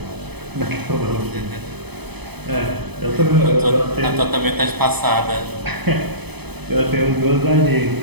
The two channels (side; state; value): left; late; 0.98 ms